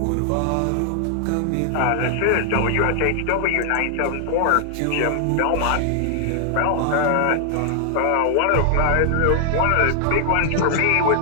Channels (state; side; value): different; both; correlation 0.00